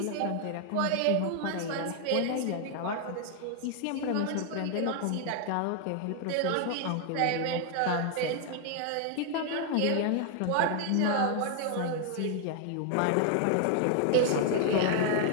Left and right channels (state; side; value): different; both; correlation 0.00